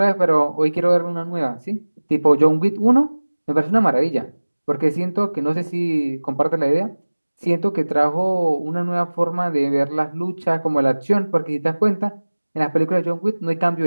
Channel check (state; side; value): inverted; both; correlation -1.00